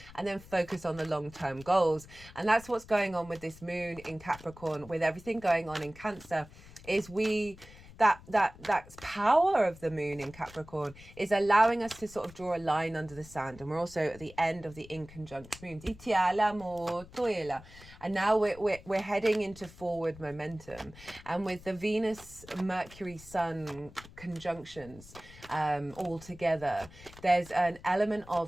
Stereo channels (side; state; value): left; noise; rumble, 19 dB below the sound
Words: and then focus on the long-term goals. And that's what's going on with this moon in Capricorn, with everything going on in Cancer, is that power of the moon in Capricorn is allowing us to sort of draw a line under the sand. And we're also at the end of the in conjunct moons. And now we're heading into forward momentum. And with the Venus, Mercury, Sun conjunctions all together, there's an element